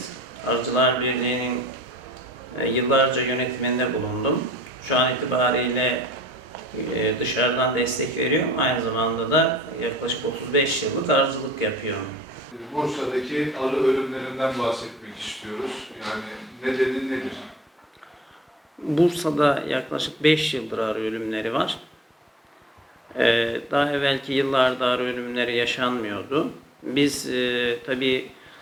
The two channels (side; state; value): both; normal; correlation 0.51